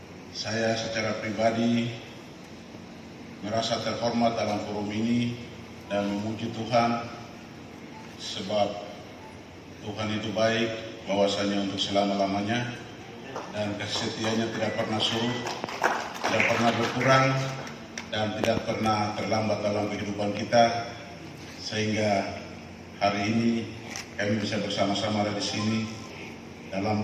saya secara pribadi merasa terhormat dalam forum ini dan memuji Tuhan sebab Tuhan itu baik, bahwasanya untuk selama-lamanya dan kasih setianya tidak pernah surut, tidak pernah berkurang dan tidak pernah terlambat dalam kehidupan kita, sehingga hari ini kami bisa bersama-sama ada di sini dalam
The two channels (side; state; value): both; identical; correlation 1.00